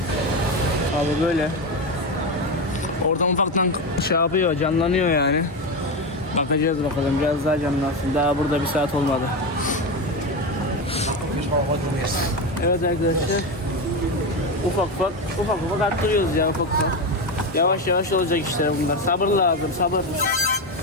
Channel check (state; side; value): normal; both; correlation 0.15